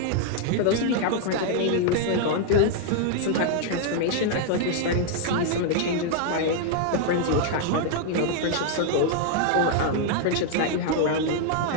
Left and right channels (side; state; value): both; different; correlation 0.00